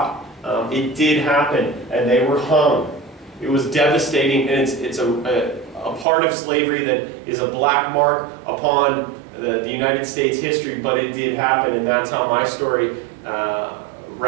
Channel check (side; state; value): left; drops out; at 6.1 s